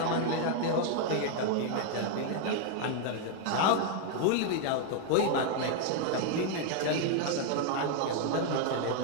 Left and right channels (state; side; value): different; both; correlation 0.00